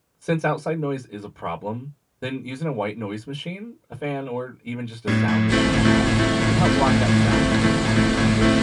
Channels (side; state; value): both; identical; correlation 1.00